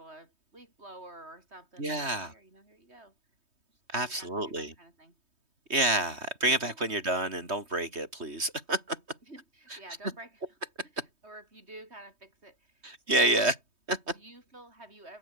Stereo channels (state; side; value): late; left; 3.2 ms